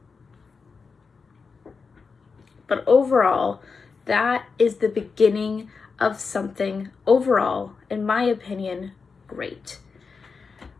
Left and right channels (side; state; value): right; quieter; 5.0 dB